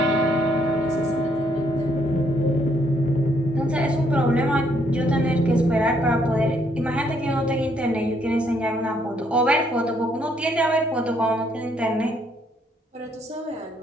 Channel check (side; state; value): both; normal; correlation 0.70